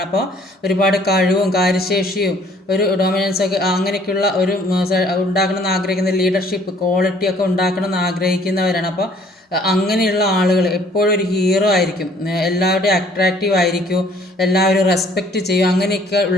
അപ്പോൾ ഒരുപാട് കഴിവും കാര്യശേഷിയും ഒരു ഡൊമിനൻസ് ഒക്കെ അങ്ങനെയൊക്കെയുള്ള ഒരു ഉണ്ടാക്കണമെന്ന് ആഗ്രഹിക്കുന്ന ലീഡർഷിപ്പ് ക്വാളിറ്റിയൊക്കെ ഉണ്ടാക്കണമെന്ന് ആഗ്രഹിക്കുന്നവരാണ്. അപ്പോൾ അങ്ങനെയുള്ള ആളുകൾ എപ്പോഴും ഒരു ഹീറോ ആയിരിക്കും, എല്ലാവരുടെയും അട്രാക്റ്റീവ് ആയിരിക്കും, എല്ലാവരും റെസ്പെക്റ്റ് ചെയ്യും. അങ്ങനെയൊക്കെ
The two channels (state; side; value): normal; both; correlation 0.58